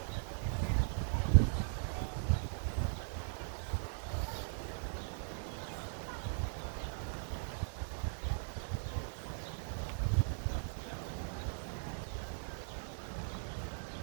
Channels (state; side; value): silent; left; digital silence